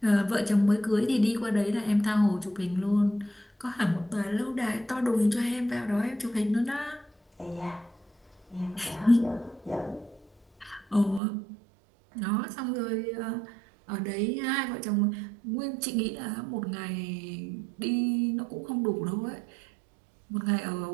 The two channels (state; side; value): drops out; left; at 11.2 s